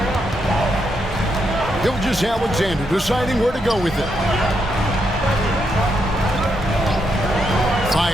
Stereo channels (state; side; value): normal; both; correlation 0.80